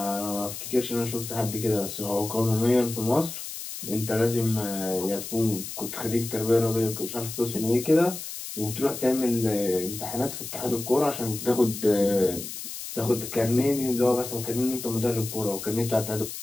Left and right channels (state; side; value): noise; left; hiss, 9 dB below the sound